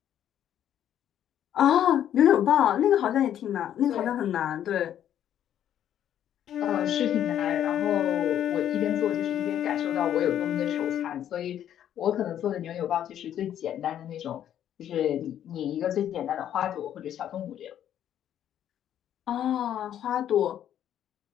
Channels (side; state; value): right; quieter; 10.5 dB